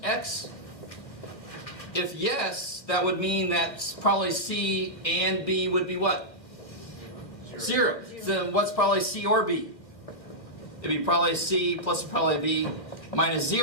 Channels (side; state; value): right; late; 1.4 ms